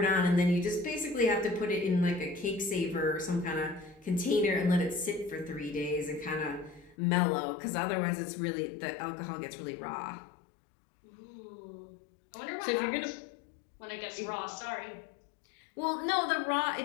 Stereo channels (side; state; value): right; drops out; at 7.0 s